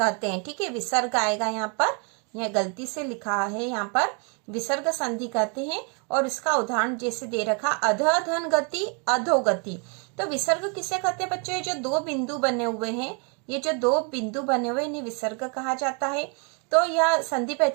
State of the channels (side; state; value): left; quieter; 36.3 dB